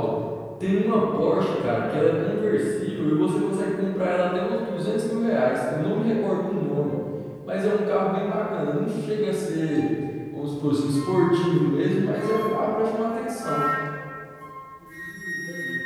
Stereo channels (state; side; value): identical; both; correlation 1.00